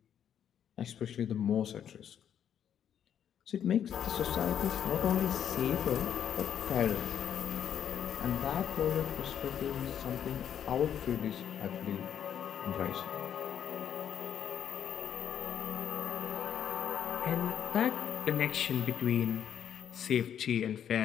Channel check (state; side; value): quieter; right; 9.2 dB